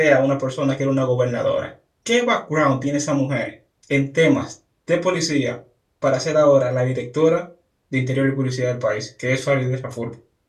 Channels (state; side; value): identical; both; correlation 1.00